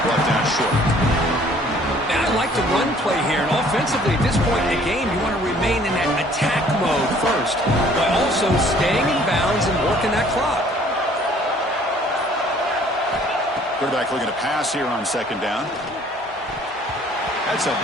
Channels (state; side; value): normal; both; correlation 0.57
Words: brought down short. Man, I like the run play here, and offensively at this point in the game, you want to remain in that attack mode first, but also staying in bounds and working that clock. Quarterback looking to pass here on 2nd down. That's a